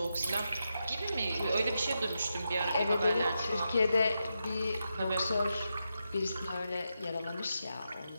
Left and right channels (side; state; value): both; inverted; correlation -0.87